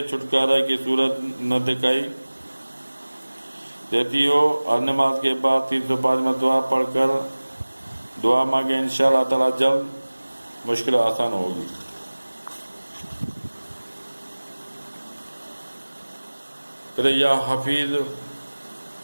چھٹکارے کی صورت نہ دکھائی دیتی ہو، ہر نماز کے بعد 305 مرتبہ پڑھ کر دعا مانگے، انشاءاللہ تعالی جلد مشکل آسان ہوگی۔ پھر یا حفیظ،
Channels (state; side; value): inverted; both; correlation -1.00